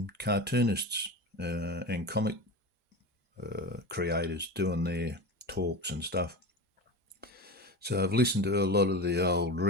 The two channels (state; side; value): normal; both; correlation 0.27